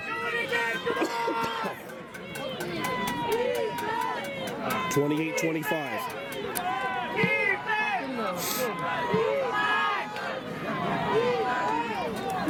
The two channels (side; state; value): both; identical; correlation 1.00